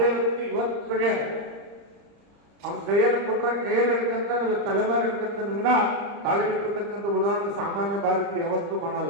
ವ್ಯಕ್ತಿ ಇವತ್ತಿಗೆ ಅವ್ನ ಕೈಯಲ್ಲಿ ಕೊಟ್ರೆ ಕೈಯಲ್ಲಿ ಹಿಡ್ಕಂತ ತಲೆಮಾರಿ ಹಿಡ್ಕಂತ ವಿನ ತಾಳಿಬಿಟ್ಟಿರ್ತಕ್ಕಂಥ ಉದಾಹರಣೆ ಸಾಮಾನ್ಯ ಭಾರತೀಯ ಯಾವತ್ತೂ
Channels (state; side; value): late; left; 35 ms